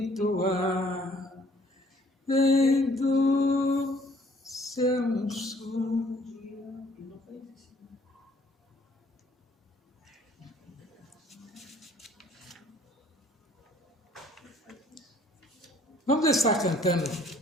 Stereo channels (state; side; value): normal; both; correlation 0.59